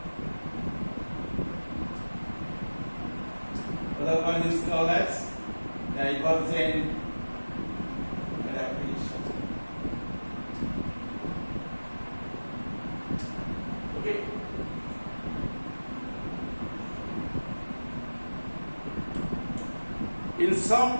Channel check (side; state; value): both; inverted; correlation -1.00